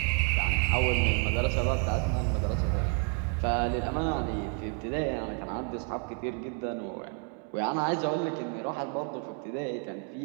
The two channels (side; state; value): left; quieter; 35.5 dB